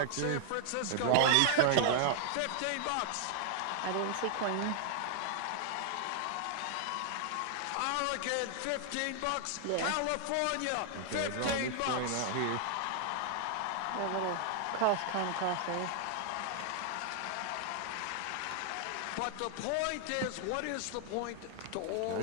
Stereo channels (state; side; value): different; both; correlation 0.00